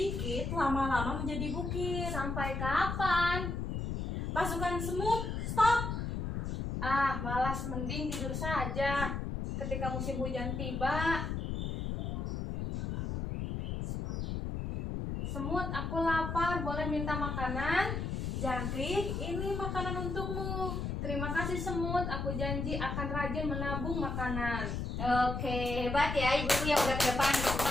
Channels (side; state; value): left; noise; rumble, 3 dB below the sound